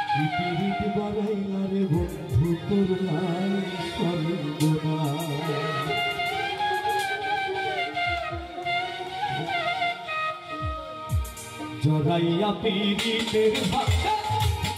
পিরিত বাড়াইলা রে বন্ধু করলাই সর্বনাশ জড়াইয়া পিরিতের ভাষা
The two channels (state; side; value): identical; both; correlation 1.00